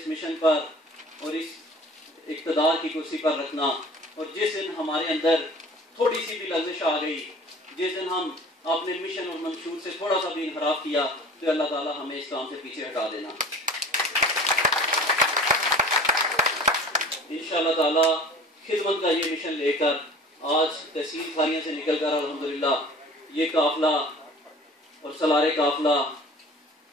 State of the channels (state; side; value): normal; both; correlation 0.44